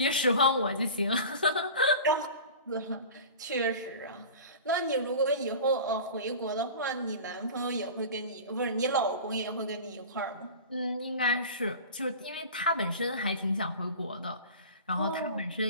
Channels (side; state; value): both; inverted; correlation -0.36